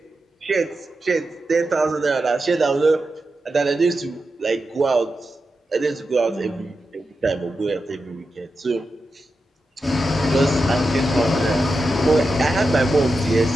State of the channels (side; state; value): both; normal; correlation 0.89